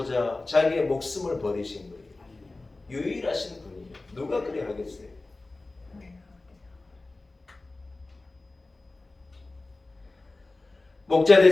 자기의 목숨을 버리신 거예요. 유일하신 분이에요. 누가 그래 하겠어요? 목자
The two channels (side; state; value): right; quieter; 3.2 dB